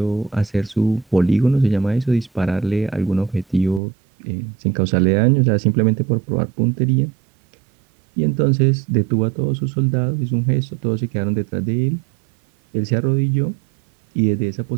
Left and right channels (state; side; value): drops out; left; at 3.8 s